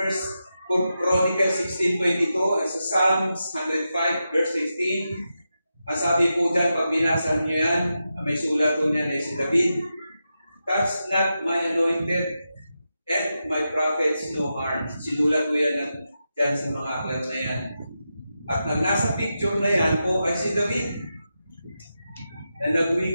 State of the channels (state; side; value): inverted; both; correlation -0.89